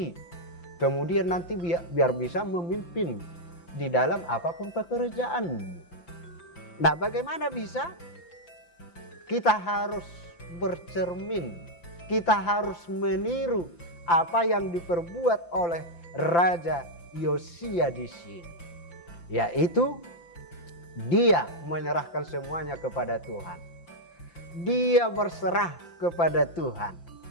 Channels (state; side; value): late; right; 5.8 ms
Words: Kemudian nanti biar bisa memimpin di dalam apapun pekerjaan. Nah, bagaimana bisa? Kita harus bercermin, kita harus meniru apa yang diperbuat oleh Raja Yosia di sini. Yaitu dia menyerahkan semuanya kepada Tuhan. Dia berserah kepada Tuhan.